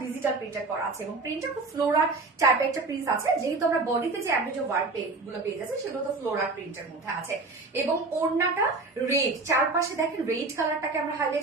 ডিজিটাল প্রিন্টার করা আছে এবং প্রিন্টটা খুব ফ্লোরার টাইপের একটা প্রিন্ট আছে, যেহেতু আমরা বডিতে যে অ্যাভারেজ ওয়ার্ক গুলো পেয়ে যাচ্ছে সেগুলো তো ফ্লোরার প্রিন্টের মধ্যে আছে। এবং ওড়নাটা রেড, চারপাশে দেখেন রেড কালারটাকে আমরা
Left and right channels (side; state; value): left; quieter; 3.6 dB